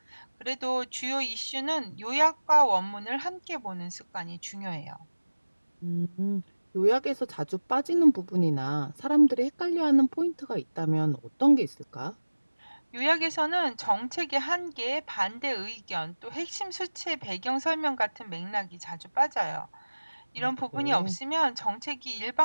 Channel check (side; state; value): both; inverted; correlation -1.00